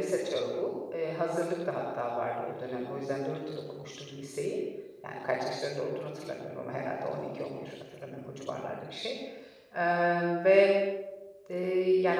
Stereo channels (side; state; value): both; identical; correlation 1.00